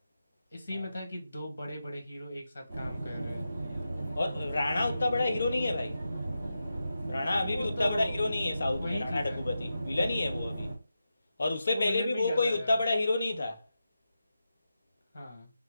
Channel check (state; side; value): inverted; both; correlation -0.90